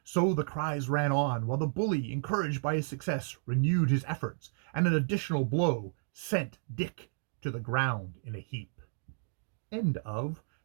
So the cries ran on, while the bully, encouraged by his success, renewed his efforts, and an additional blow sent Dick to the ground in a heap. End of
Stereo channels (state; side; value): silent; left; digital silence